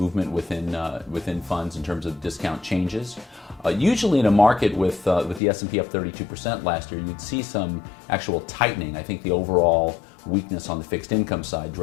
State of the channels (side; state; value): right; drops out; at 5.4 s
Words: within funds in terms of discount changes. Usually in a market with the S&P up 32% last year, you'd see some actual tightening. I think the overall weakness on the fixed income side